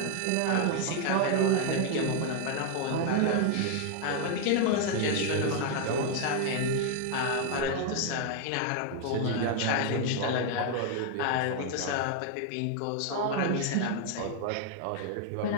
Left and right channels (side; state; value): both; different; correlation 0.00